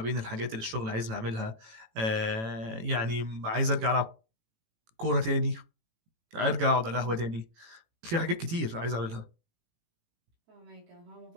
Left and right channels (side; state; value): left; late; 18 ms